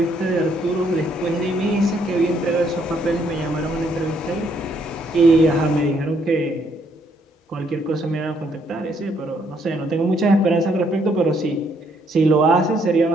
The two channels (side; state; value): both; normal; correlation 0.70